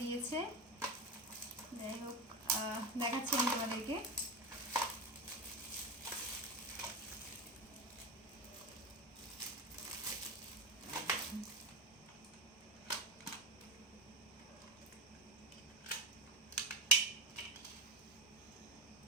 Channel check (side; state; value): both; normal; correlation 0.19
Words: দিয়েছে। যাই হোক, দেখাচ্ছি আমি তোমাদেরকে।